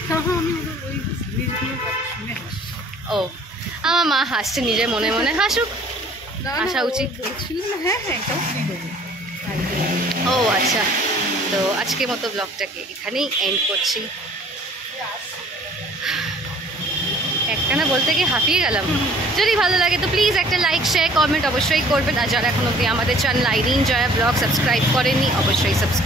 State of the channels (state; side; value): normal; both; correlation 0.54